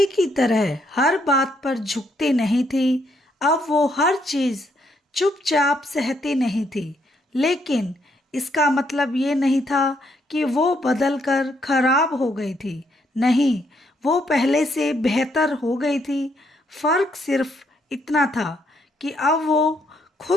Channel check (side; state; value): both; normal; correlation 0.74